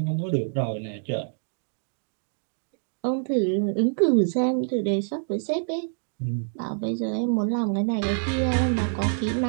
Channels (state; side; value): silent; left; digital silence